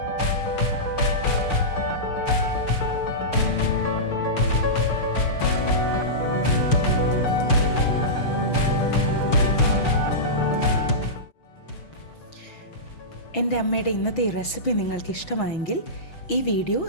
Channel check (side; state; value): right; late; 6.3 ms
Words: എൻ്റെ അമ്മയുടെ ഇന്നത്തെ ഈ റെസിപ്പി നിങ്ങൾക്ക് ഇഷ്ടമായെങ്കിൽ ഈ വീഡിയോ